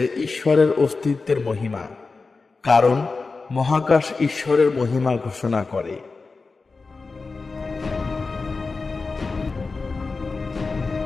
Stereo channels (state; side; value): quieter; right; 4.1 dB